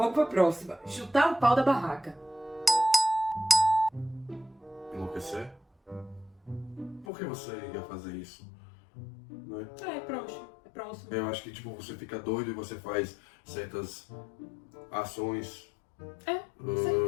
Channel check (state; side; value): drops out; right; at 7.1 s